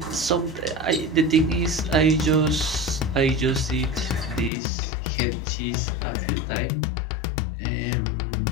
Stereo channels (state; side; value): drops out; right; at 4.5 s